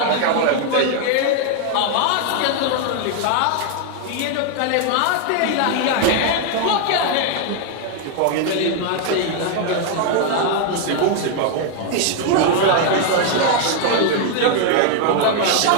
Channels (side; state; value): both; different; correlation 0.00